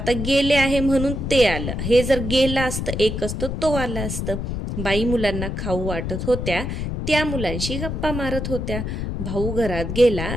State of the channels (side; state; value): left; noise; rumble, 3 dB below the sound